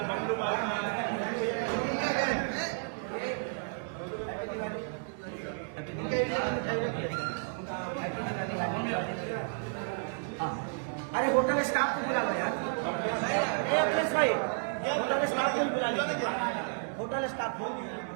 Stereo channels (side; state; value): left; silent; digital silence